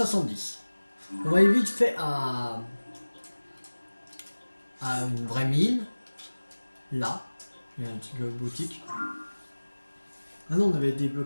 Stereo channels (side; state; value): both; inverted; correlation -1.00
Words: On va aller vite fait à une vraie mine. Là, il y a une petite boutique. Ah non, on avait